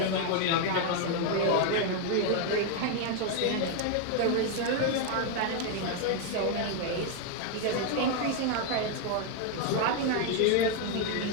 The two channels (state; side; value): different; both; correlation 0.01